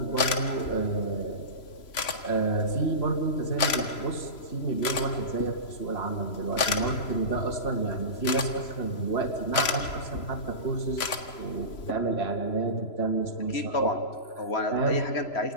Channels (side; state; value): right; late; 3.0 ms